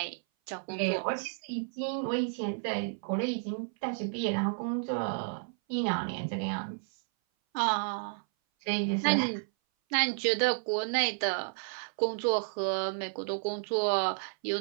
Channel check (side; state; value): left; silent; 57 dB below the other